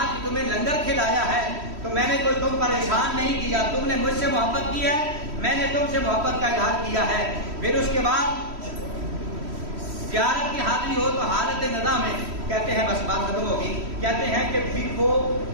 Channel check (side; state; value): left; late; 3.1 ms